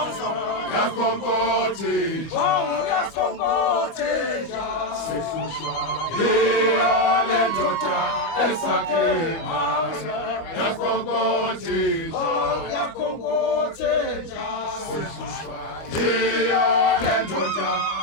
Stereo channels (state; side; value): late; right; 25 ms